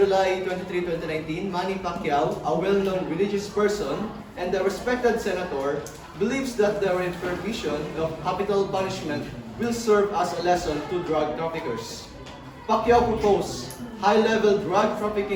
23, 2019, Manny Pacquiao, a well-known religious person and a respected senator, believes that the prohibition of capital punishment will serve as a lesson to drug traffickers. Pacquiao proposed high-level drug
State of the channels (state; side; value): identical; both; correlation 1.00